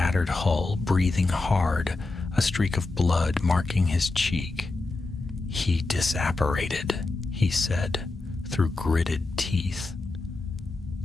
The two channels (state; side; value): quieter; right; 3.3 dB